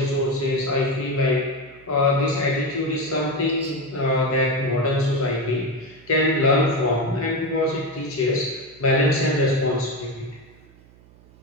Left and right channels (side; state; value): right; noise; hum, 26 dB below the sound